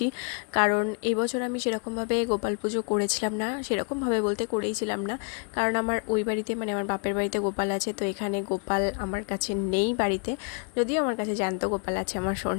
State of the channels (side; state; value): right; quieter; 38.3 dB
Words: কারণ এবছর আমি সেরকমভাবে গোপাল পুজো করেছিলাম না, সেরকমভাবে বলতে করেইছিলাম না, কারণ আমার ওই বাড়িতে মানে আমার বাপের বাড়িতে গোপাল আছে, তো এখানে গোপাল আমার কাছে নেই বাড়িতে, যদিও আমার কাছে জ্যান্ত গোপাল আছে আমার